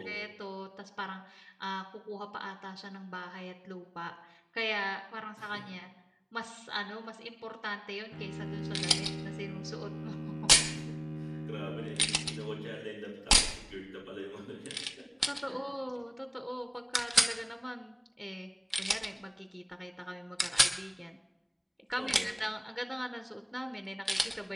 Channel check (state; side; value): identical; both; correlation 1.00